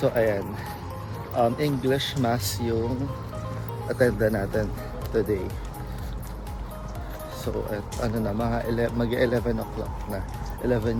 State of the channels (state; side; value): identical; both; correlation 1.00